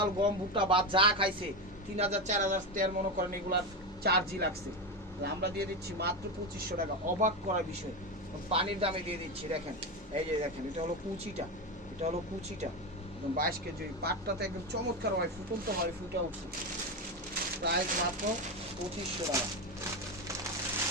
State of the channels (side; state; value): both; normal; correlation 0.15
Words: গম ভুট্টা বা যা খাইছে 3000 4000 টাকার মনে করেন এগুলার চার্জই লাগছে, আমরা দিয়ে দিচ্ছি মাত্র 2500 টাকা, অবাক করার বিষয়, পানির দামে দিয়ে দিচ্ছি। দেখেন এই যে দেখেন এটা হলো কুচিটা, এটা হলো কুচিটা একদম 22 কেজি, পাটটাতে একদম চমৎকার হয়, ফুটন্ত হয়, ফুটে উঠছে। প্রাইস মাত্র 2500 টাকা।